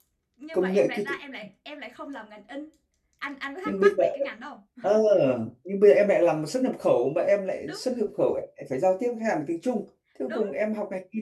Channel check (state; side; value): identical; both; correlation 1.00